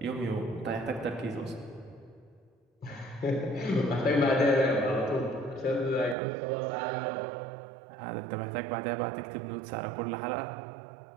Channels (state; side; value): drops out; left; at 6.2 s